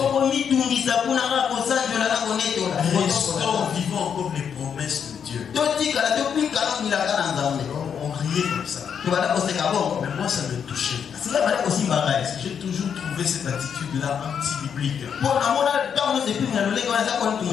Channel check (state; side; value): quieter; right; 7.5 dB